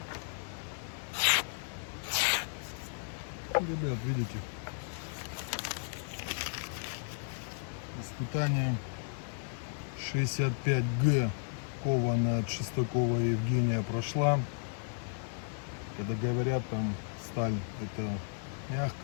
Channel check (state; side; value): silent; right; 55 dB below the other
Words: Ребят, видите, испытание 65Г кованая от Шестакова Евгения прошла. Когда говорят, там сталь это